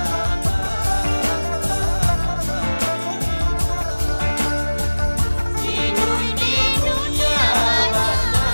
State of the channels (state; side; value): inverted; both; correlation -1.00